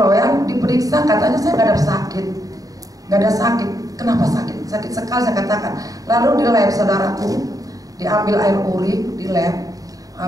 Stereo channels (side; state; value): left; late; 0.17 ms